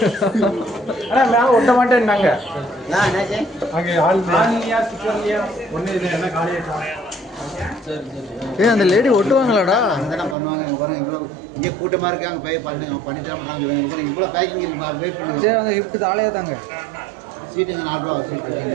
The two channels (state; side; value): drops out; left; at 10.4 s